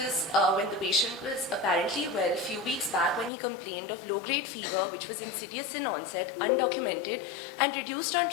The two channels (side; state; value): right; drops out; at 3.3 s